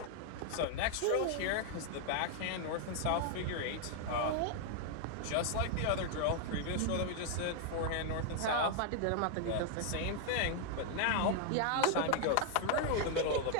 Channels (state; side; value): different; both; correlation 0.00